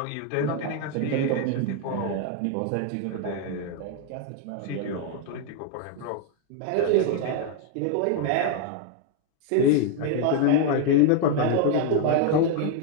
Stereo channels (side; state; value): both; different; correlation 0.00